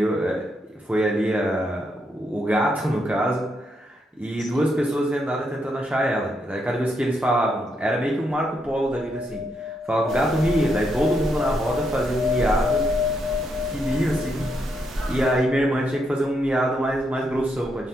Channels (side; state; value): both; normal; correlation 0.79